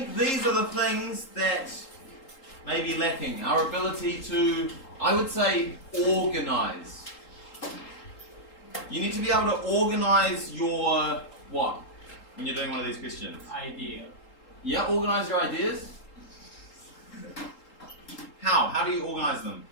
these are the things that may be lacking. Our ability to, I would say, organize. You need to be able to organize your what? When you're doing one of these questions? Idea. Yeah, organize your ideas. How? How do you organize them?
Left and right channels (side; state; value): right; late; 3.8 ms